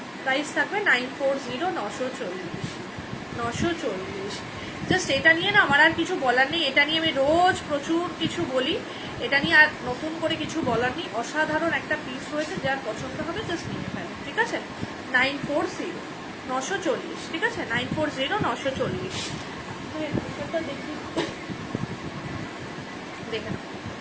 প্রাইস থাকবে 940, 940। জাস্ট এটা নিয়ে না আমার আর কিছু বলার নেই, এটা নিয়ে আমি রোজ প্রচুর কিছু বলি, এটা নিয়ে আর নতুন করে কিছু বলার নেই। অসাধারণ একটা পিস রয়েছে, যার পছন্দ হবে জাস্ট নিয়ে ফেলো, ঠিক আছে। 940, 940, ঠিক আছে। 940, 940। দেখি, দেখে নাও।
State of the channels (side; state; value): both; identical; correlation 1.00